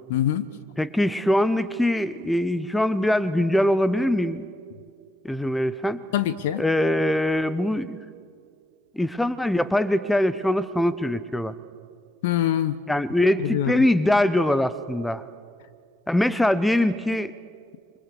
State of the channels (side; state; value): both; normal; correlation 0.80